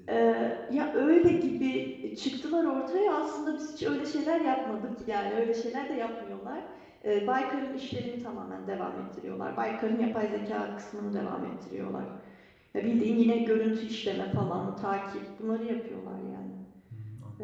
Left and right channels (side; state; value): both; identical; correlation 1.00